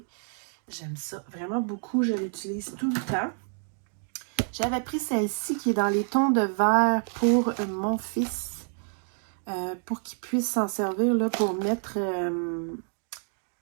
J'aime ça vraiment beaucoup, je l'utilise tout le temps. J'avais pris celle-ci qui est dans les tons de vert pour mon fils. Pour qu'il puisse s'en servir là, pour mettre...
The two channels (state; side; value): silent; left; 56 dB below the other